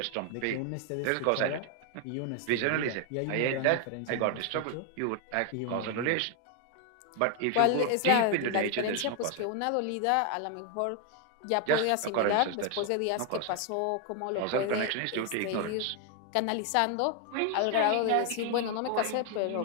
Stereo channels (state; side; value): different; both; correlation 0.00